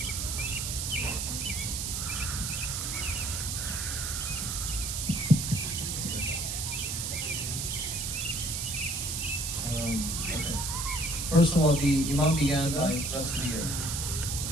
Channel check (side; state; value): right; noise; hiss, 2 dB below the sound